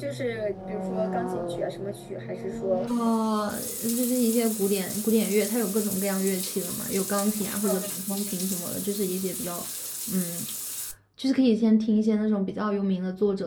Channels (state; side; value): identical; both; correlation 1.00